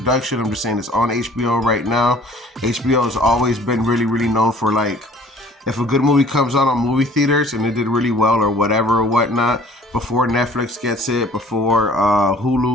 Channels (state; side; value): normal; both; correlation 0.52